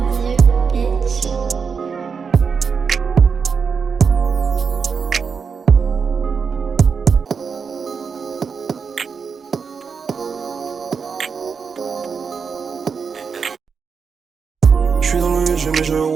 bitch. J'suis dans le jeu mais je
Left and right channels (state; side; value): quieter; left; 5.9 dB